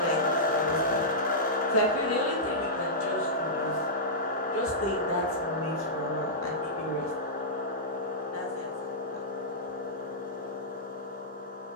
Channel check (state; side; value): normal; both; correlation -0.14